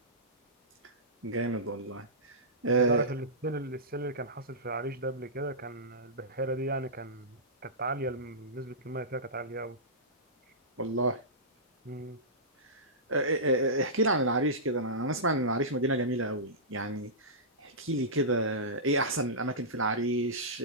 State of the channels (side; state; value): both; normal; correlation -0.18